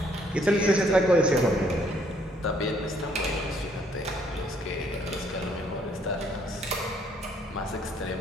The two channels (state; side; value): normal; both; correlation 0.66